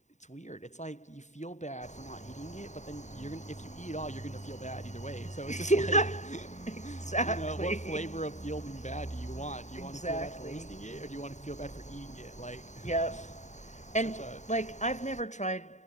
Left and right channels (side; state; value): right; late; 0.34 ms